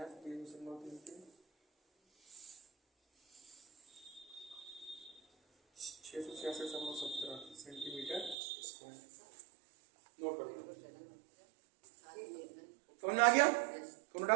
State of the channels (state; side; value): drops out; left; at 8.3 s